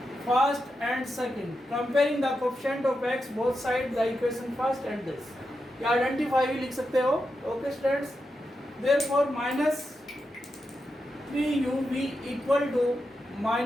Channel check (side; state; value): both; normal; correlation 0.87